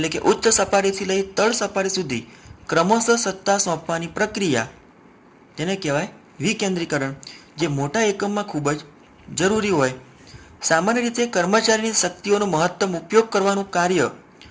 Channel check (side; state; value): both; identical; correlation 1.00